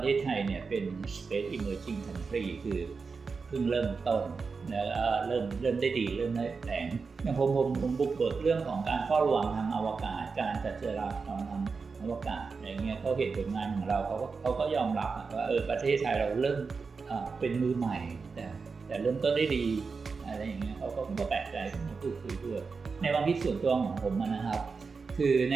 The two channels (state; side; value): quieter; left; 4.8 dB